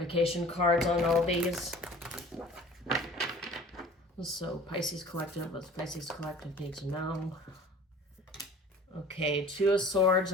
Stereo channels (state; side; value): normal; both; correlation 0.45